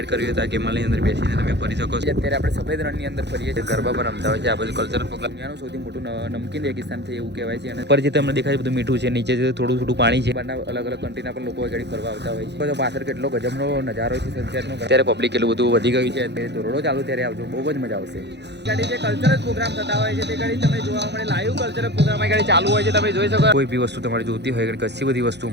કરવી હોય તો આ કેમલની અંદર બેસીને તમે ફરી શકો છો. અત્યારે આપણે સફેદ રણની અંદર ફરીએ છીએ, ગરબા પર રમતા હોય છે. આ બધું કલ્ચરલ પ્રોગ્રામ. દુનિયાનું સૌથી મોટું નમકીન રેગિસ્તાન છે એવું કહેવાય છે. અને ઉપર જે તમને દેખાય બધું મીઠું છે, નીચે થોડું થોડું પાણી છે. બહારના અલગ અલગ કન્ટ્રીના પણ લોકો ઘડી ફરવા આવતા હોય છે. તો પાછળ કેટલો ગજબનો નજારો છે સનસેટનો. અત્યારે પબ્લિક એટલું બધું વધી ગયું છે. અત્યારે ધોરડો ચાલુ ત્યારે આવજો, બહુ જ મજા આવશે. ગાડી જે કલ્ચરલ પ્રોગ્રામ થતા હોય છે તે ગાડી તમે જોવા મળે. લાઈવ કલ્ચરલ પ્રોગ્રામ ગાડી ચાલુ હોય છે, તમે જોઈ શકો. કોઈ બી વસ્તુ તમારે જોતી હોય કચ્છી બધી વસ્તુ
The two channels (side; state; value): left; late; 0.50 ms